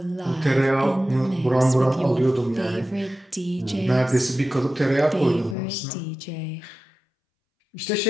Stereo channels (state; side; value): drops out; right; at 5.6 s